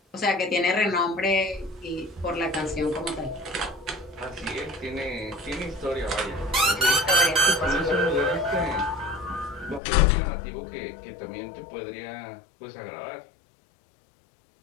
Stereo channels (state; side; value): drops out; right; at 9.8 s